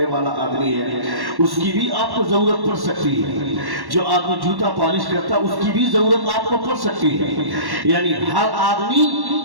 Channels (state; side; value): late; left; 1.1 ms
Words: والا آدمی ہے، اس کی بھی آپ کو ضرورت پڑ سکتی ہے۔ جو آدمی جوتا پالش کرتا ہے، اس کی بھی ضرورت آپ کو پڑ سکتی ہے۔ یعنی ہر